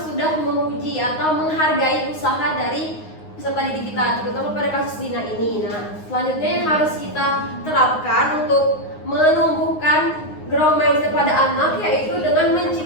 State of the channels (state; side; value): late; right; 9.6 ms